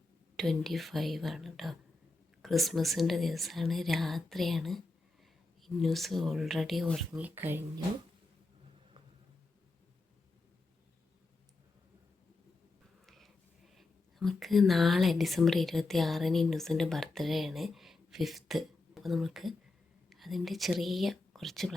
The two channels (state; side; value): quieter; right; 3.3 dB